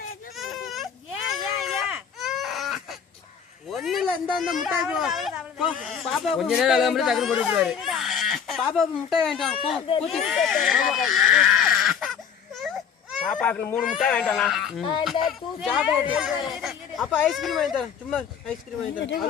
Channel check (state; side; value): quieter; right; 7.3 dB